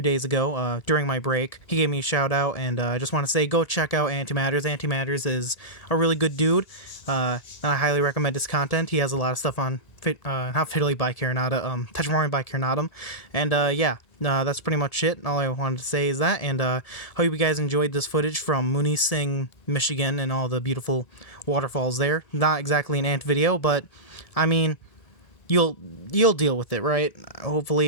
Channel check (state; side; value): late; right; 1.7 ms